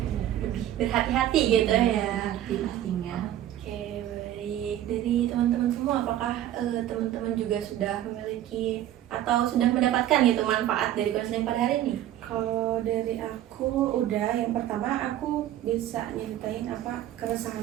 Lebih berhati-hati gitu ya. hati pastinya. Oke, baik. Dari teman-teman semua, apakah teman-teman juga sudah memiliki atau sudah mendapatkan gitu manfaat dari konseling pada hari ini? Kalau dari aku udah, yang pertama aku bisa nyeritain apa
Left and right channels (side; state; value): left; quieter; 12.4 dB